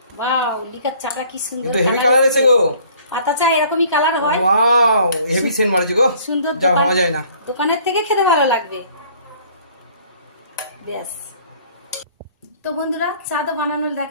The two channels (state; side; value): inverted; both; correlation -0.56